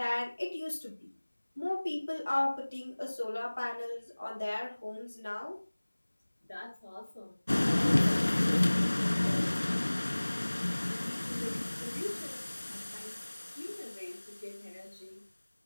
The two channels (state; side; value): inverted; both; correlation -1.00